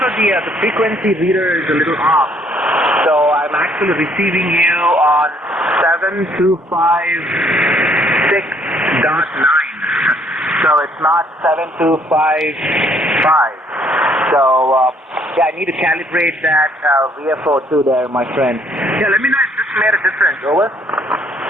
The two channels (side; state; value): both; normal; correlation 0.65